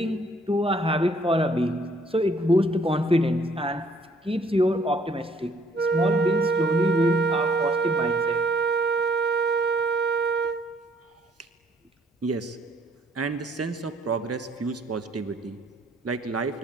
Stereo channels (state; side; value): normal; both; correlation 0.63